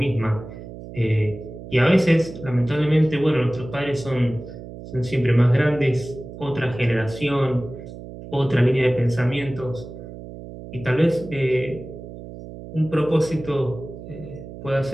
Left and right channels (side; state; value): right; noise; hum, 13 dB below the sound